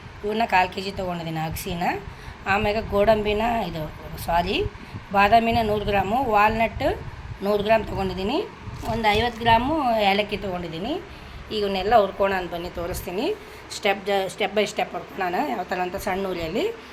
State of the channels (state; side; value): identical; both; correlation 1.00